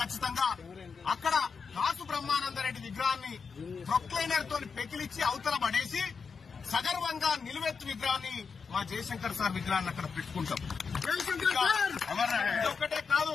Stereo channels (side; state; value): right; quieter; 5.5 dB